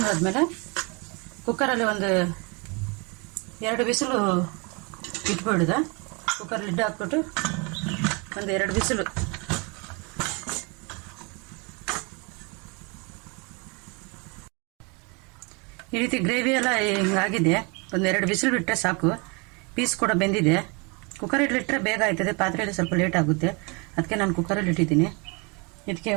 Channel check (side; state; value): left; quieter; 30.8 dB